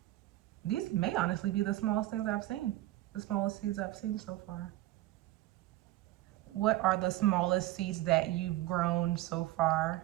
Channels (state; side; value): quieter; left; 16.1 dB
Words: These may honestly be the smallest things I've seen, the smallest seeds I've seen so far. What are the smallest seeds that you've grown so far?